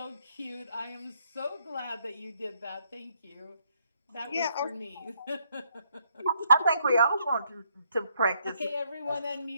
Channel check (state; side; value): inverted; both; correlation -0.72